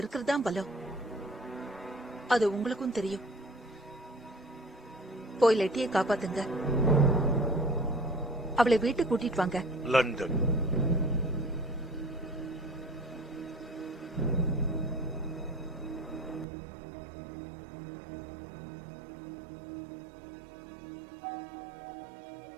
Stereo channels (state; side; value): drops out; left; at 16.4 s